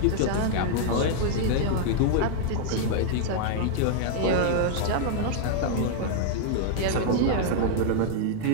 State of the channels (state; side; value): different; both; correlation -0.01